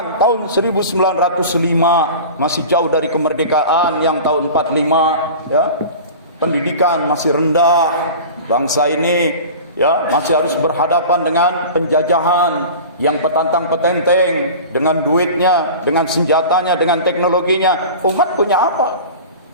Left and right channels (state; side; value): inverted; both; correlation -0.36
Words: tahun 1905 masih jauh dari kemerdekaan, yang tahun 45, ya, pendidikan masih rendah, bangsa ini, ya, masih harus berhadapan dengan penjajahan yang petantang-petenteng dengan duitnya, dengan senjatanya, dengan teknologinya. Umat punya apa?